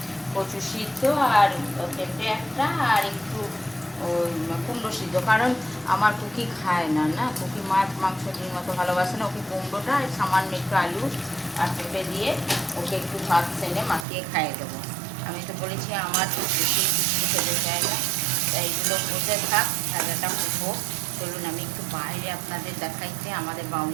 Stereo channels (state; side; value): drops out; left; at 14.1 s